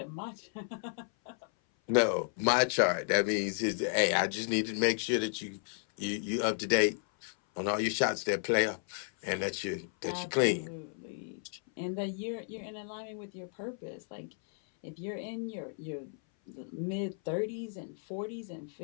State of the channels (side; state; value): right; silent; 56 dB below the other